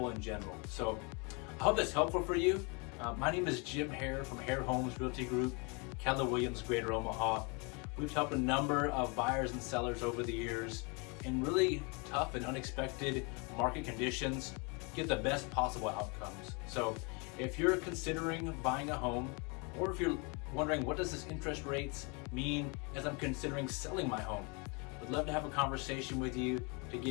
in general. So I hope that's helpful for you. My name is Jim Hare from Hare Homes Realty Group, Keller Williams, Greater Omaha. We've helped a number of buyers and sellers over the years in really tough and unexpected market conditions get the best possible outcomes. So if you're considering buying a home, or if you're wondering what does this interest rates mean as I'm considering selling my home, I'd love to have a conversation with you to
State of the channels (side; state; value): right; quieter; 31.8 dB